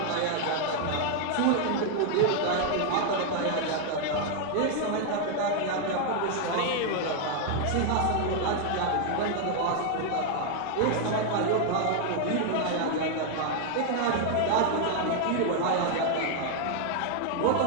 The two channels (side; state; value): both; different; correlation 0.00